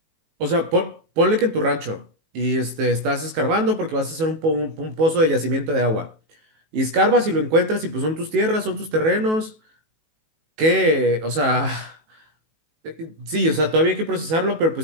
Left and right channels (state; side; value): late; left; 19 ms